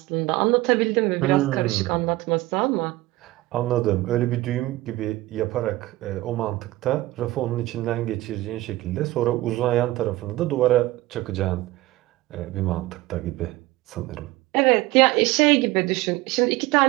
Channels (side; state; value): left; quieter; 18.3 dB